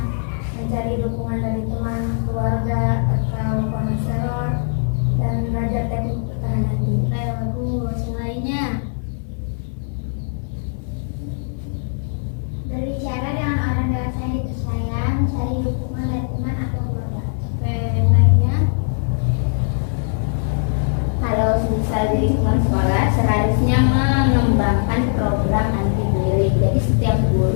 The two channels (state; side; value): silent; right; 57 dB below the other